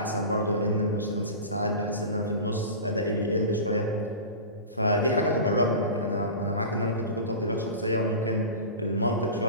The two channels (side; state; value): both; inverted; correlation -0.31